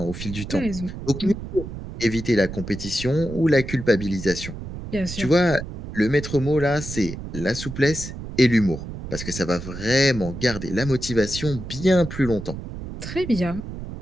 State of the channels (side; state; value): right; noise; rumble, 9 dB below the sound